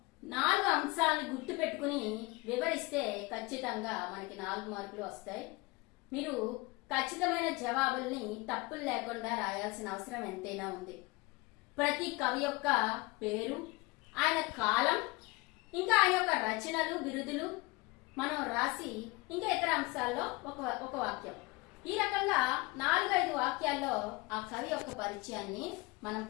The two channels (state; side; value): quieter; right; 23.9 dB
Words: 4 అంశాలను గుర్తు పెట్టుకుని వివరిస్తే ఖచ్చితంగా మనకి 4 మార్కులు వస్తాయి. మీరు ఖచ్చితమైన జవాబుల్ని తప్పులు లేకుండా రాయాల్సిన అవసరం ఎంతైనా ఉంది. ప్రతి కవి యొక్క పేరు, ఆయన కాలం, ఇంకా ఆయన యొక్క రచనలు, బిరుదులు మనం రాసి ఇంకా ఇతర అంశాల్లో ఒక వాక్యం, ఈ రకంగా 4-5 వాక్యాల్లో ఆ కవి యొక్క పరిచయాన్ని మనం